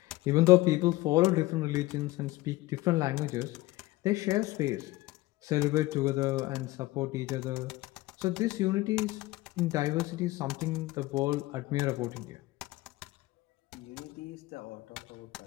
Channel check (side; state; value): right; quieter; 18.8 dB